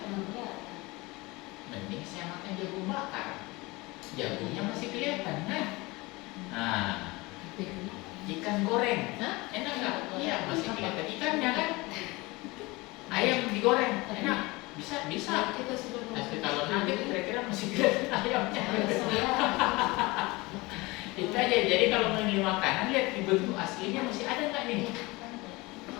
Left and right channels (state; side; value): quieter; right; 23.1 dB